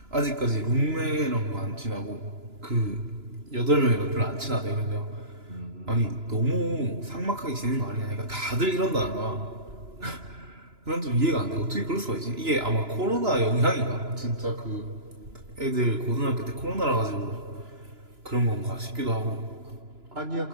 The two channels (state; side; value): late; left; 2.9 ms